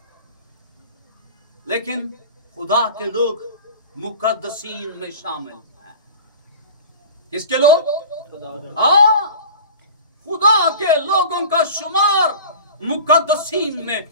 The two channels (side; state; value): both; inverted; correlation -0.38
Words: लेकिन खुदा के लोग मुकद्दसीन में शामिल हैं। किसके लोग? खुदा के लोगों का शुमार मुकद्दसीन